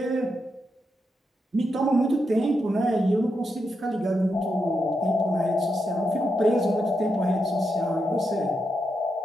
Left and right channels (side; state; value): both; normal; correlation 0.84